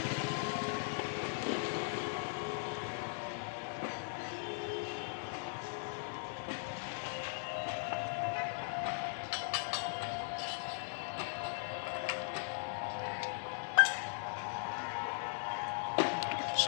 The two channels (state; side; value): silent; right; digital silence